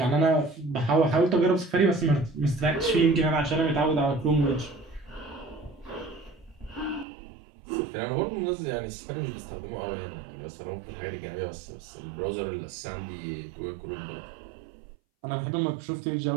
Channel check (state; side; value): drops out; left; at 7.1 s